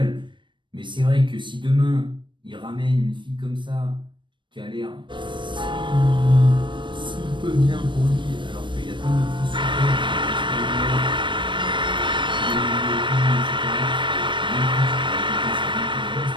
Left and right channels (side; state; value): left; late; 0.23 ms